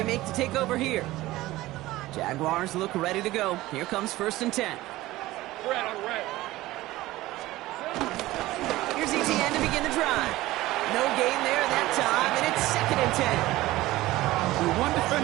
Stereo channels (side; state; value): left; quieter; 17.5 dB